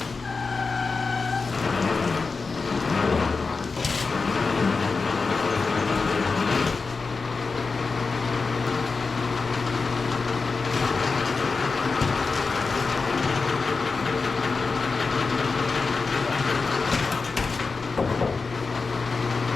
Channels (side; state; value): right; quieter; 4.4 dB